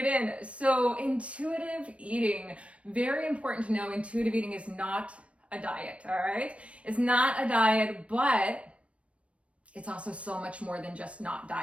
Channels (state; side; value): late; left; 0.062 ms